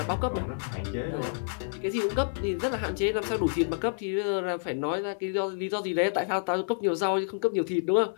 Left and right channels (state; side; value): silent; right; 59 dB below the other